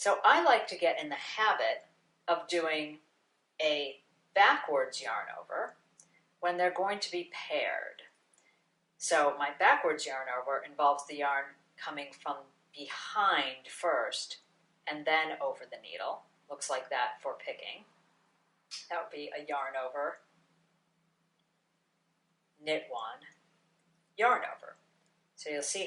I like to get in the habit of doing a backwards yarn over when they're going to be paired. So my backwards yarn over involves the yarn coming from behind first and then over the needle. Looks like that for picking. That would be a yarn over, knit one, yarn over. So you'll see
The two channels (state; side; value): identical; both; correlation 1.00